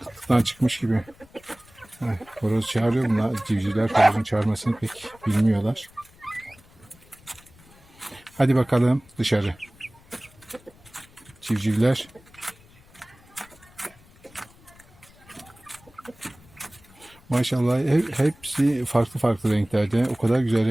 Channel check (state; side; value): noise; left; rumble, 26 dB below the sound